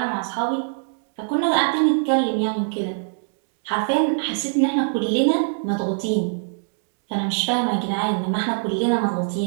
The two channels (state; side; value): silent; left; digital silence